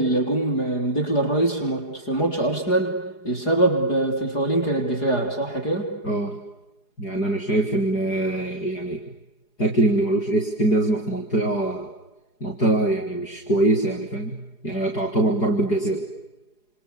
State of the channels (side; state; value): right; late; 4.8 ms